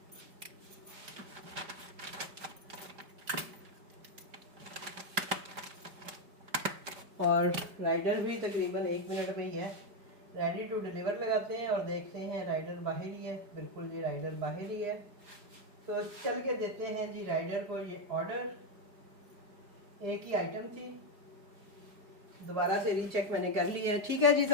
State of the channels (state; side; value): late; left; 5.0 ms